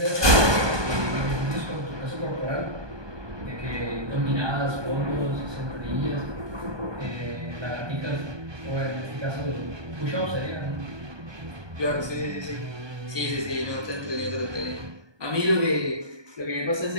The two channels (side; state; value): left; late; 1.2 ms